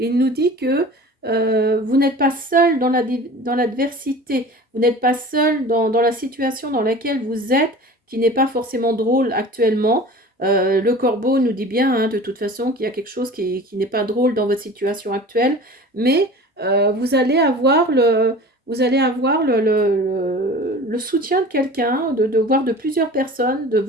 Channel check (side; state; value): both; normal; correlation 0.39